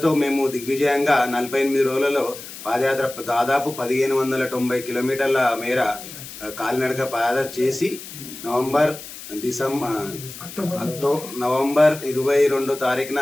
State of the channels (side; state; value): left; noise; hiss, 13 dB below the sound